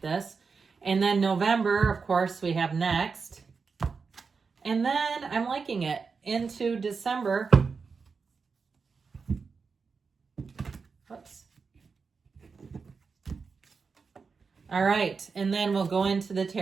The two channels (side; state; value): left; quieter; 5.1 dB